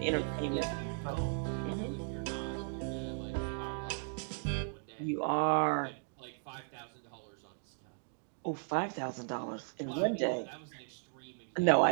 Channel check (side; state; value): left; silent; digital silence